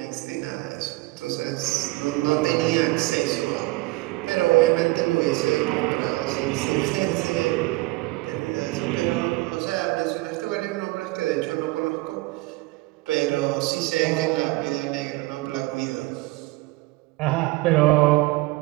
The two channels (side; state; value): left; quieter; 21.6 dB